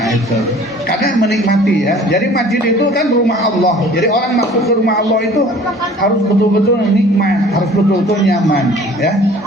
itu karena menikmati ya. Jadi masjid itu kan rumah Allah. Jadi orang masuk ke rumah Allah itu harus betul-betul nikmat, harus betul-betul nyaman ya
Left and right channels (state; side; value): normal; both; correlation 0.49